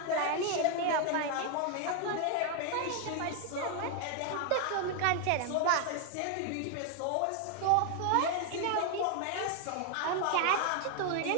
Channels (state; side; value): different; both; correlation 0.00